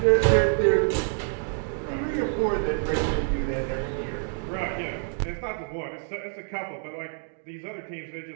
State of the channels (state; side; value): silent; left; 56 dB below the other